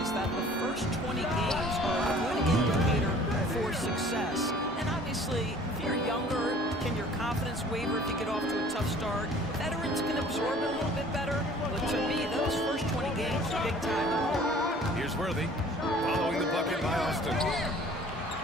is that the first 20 games are a good indicator for success. And obviously, if you're younger, can your confidence waver if you get off to a tough start? Veterans can absorb it a little bit better. But to me, those first 20 games are big time. Here's Worthy, following the bucket by Austin.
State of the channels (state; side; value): normal; both; correlation 0.51